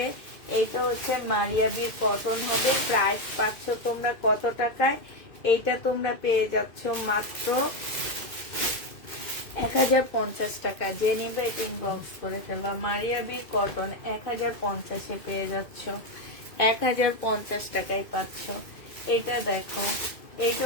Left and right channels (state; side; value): late; right; 2.1 ms